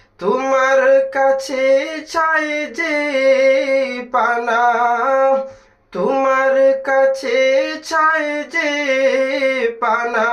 তোমার কাছে চাই যে পানা, তোমার কাছে চাই যে পানা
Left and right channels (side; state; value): both; identical; correlation 1.00